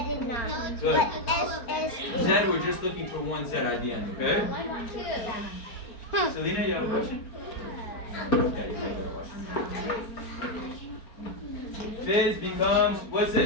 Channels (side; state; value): right; late; 4.4 ms